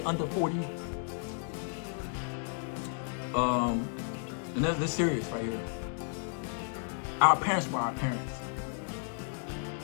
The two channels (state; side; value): silent; right; 56 dB below the other